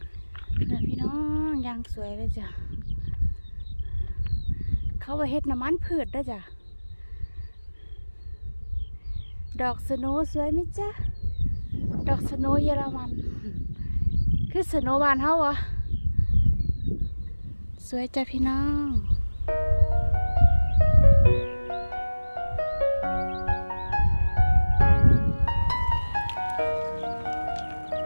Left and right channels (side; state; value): both; inverted; correlation -1.00